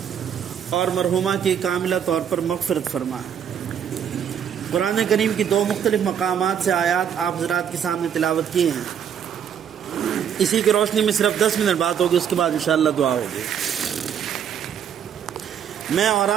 اور مرحومہ کی کاملہ طور پر مغفرت فرمائیں۔ قرآن کریم کی دو مختلف مقامات سے آیات آپ حضرات کے سامنے تلاوت کی ہیں، اسی کی روشنی میں صرف 10 منٹ بات ہوگی، اس کے بعد انشاءاللہ دعا ہوگی۔ میں اور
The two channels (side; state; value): left; quieter; 8.5 dB